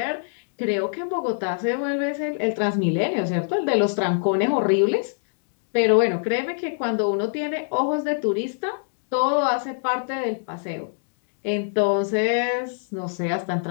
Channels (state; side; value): silent; right; digital silence